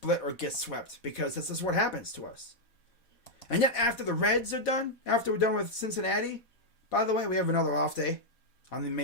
or get swept because this is what happens to us. And yet, after the Reds are done, after we're done with Cincinnati, by the way, we have another off day on the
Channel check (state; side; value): late; right; 4.1 ms